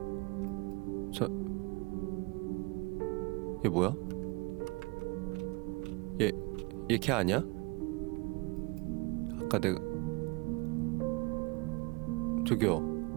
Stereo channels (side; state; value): left; quieter; 27.4 dB